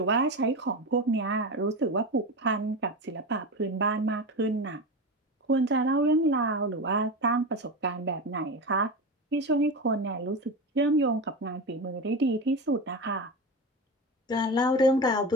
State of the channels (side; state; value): both; normal; correlation 0.23